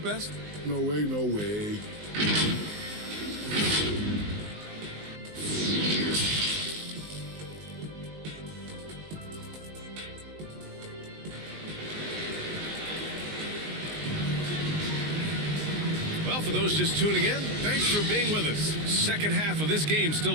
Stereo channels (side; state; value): left; late; 19 ms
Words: No way, no way. Well, for those just tuning in, thanks for being with us. Second half of this game still